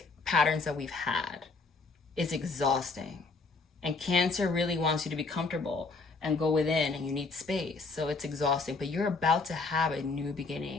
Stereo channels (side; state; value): right; quieter; 4.0 dB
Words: patterns that we've had is exhausting. And Cancer really wants you to be comfortable and go within, and you need space. So it's exhausting, but you're about to have a new